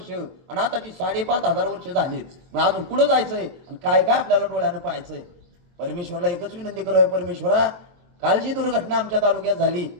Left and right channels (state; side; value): late; left; 23 ms